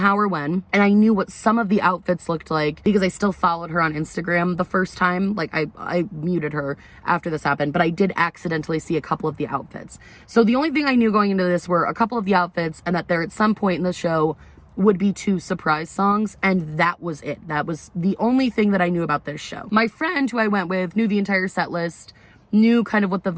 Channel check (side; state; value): both; identical; correlation 1.00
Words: or when, and I knew what some of the outfits looked like because I still followed her on Instagram the first time. Like I muted her after this happened, but I did accidentally see a couple of the outfits. So the only thing I knew going into this were a couple of the outfits and that there at some point in the show would be 2 surprise songs, and that was it. That was the only thing that I knew about this show. My friend who I went with knew the entire set list, knew kind of what the